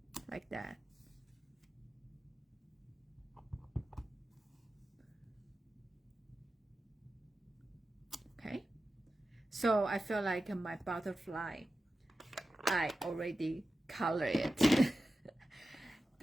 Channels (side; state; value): both; normal; correlation 0.93